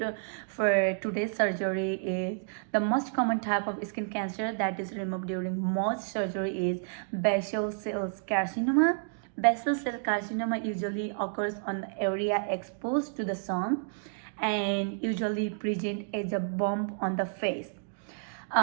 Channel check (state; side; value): silent; left; digital silence